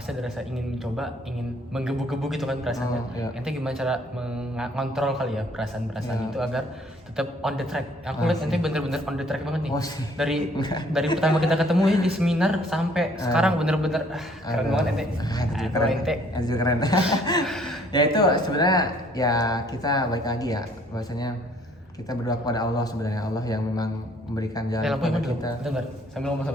ada rasa ingin mencoba, ingin menggebu-gebu gitu kan perasaannya. Ente gimana cara mengontrol kali ya perasaan-perasaan itu agar tetap on the track? Aku lihat ente bener-bener on the track banget nih. Dari pertama kita ketemu ya di seminar sampai sekarang bener-bener keren banget ente. Keren. Ya itu sebenarnya ya kita balik lagi ya, bahwasanya kita berdoa kepada Allah, sebenarnya Allah yang memang memberikan jalan kepada kita. Bentar, sambil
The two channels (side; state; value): both; normal; correlation 0.60